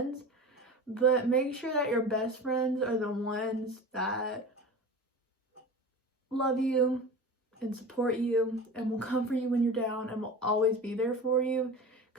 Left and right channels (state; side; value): normal; both; correlation 0.32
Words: but make sure that your best friends are the ones that love you and support you and will comfort you when you're down and will always be there for you.